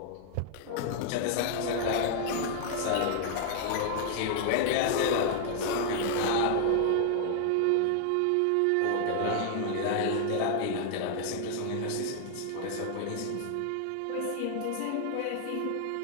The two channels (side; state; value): both; different; correlation 0.00